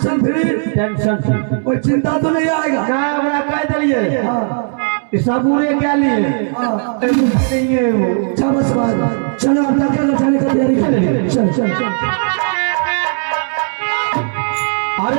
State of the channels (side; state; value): left; silent; 60 dB below the other